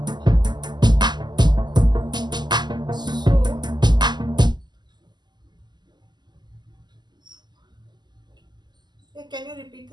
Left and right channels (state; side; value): late; left; 0.21 ms